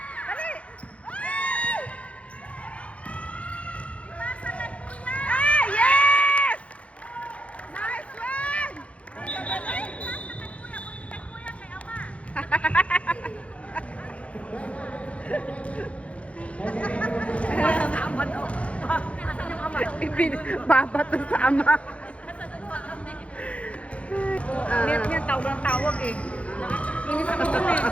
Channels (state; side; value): late; right; 0.063 ms